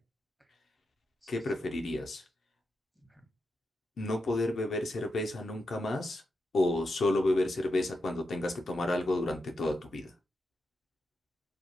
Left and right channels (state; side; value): normal; both; correlation 0.87